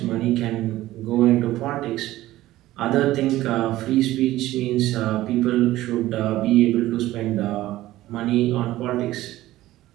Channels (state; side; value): quieter; left; 15.9 dB